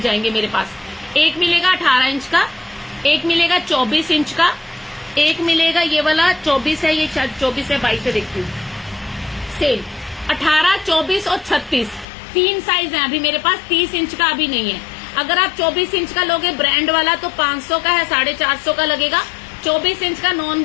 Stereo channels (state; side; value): drops out; right; at 12.1 s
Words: जाएंगे मेरे पास। एक मिलेगा 18 इंच का, एक मिलेगा 24 इंच का, एक मिलेगा ये वाला 24 है, ये 24 है, 22 है, देखती हूँ सेल। 18, 24 और 36 तीन साइज है अभी मेरे पास, 30 इंच का अभी नहीं है। अगर आप 24 इंच का लोगे ब्रांड वाला तो 500 का है, 450 का लगेगा। 24 इंच का नॉन